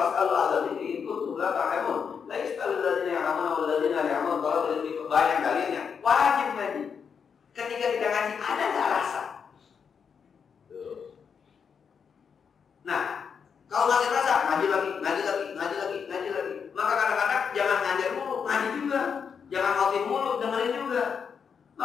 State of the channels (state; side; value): quieter; right; 6.6 dB